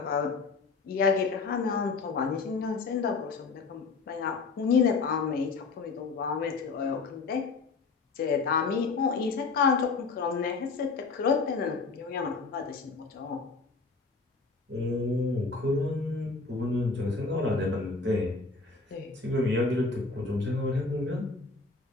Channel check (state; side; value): quieter; right; 4.3 dB